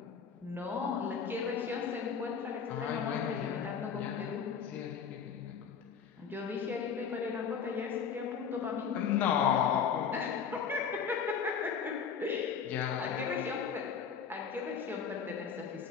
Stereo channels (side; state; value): right; quieter; 6.9 dB